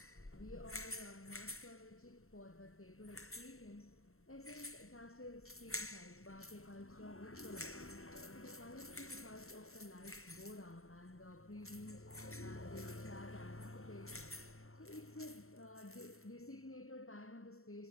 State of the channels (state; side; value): late; right; 0.63 ms